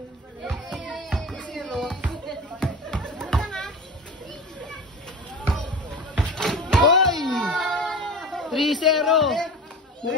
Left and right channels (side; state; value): both; normal; correlation 0.31